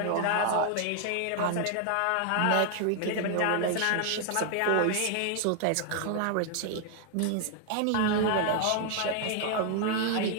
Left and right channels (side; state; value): both; different; correlation 0.00